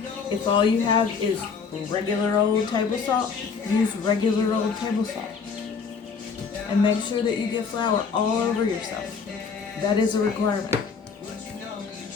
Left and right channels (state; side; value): quieter; right; 5.5 dB